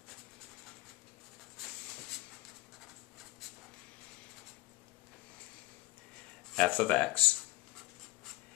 f of x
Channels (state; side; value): quieter; right; 22.7 dB